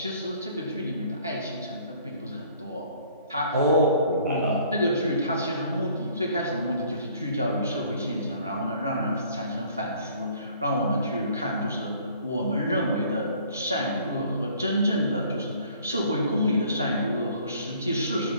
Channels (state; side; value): inverted; both; correlation -0.56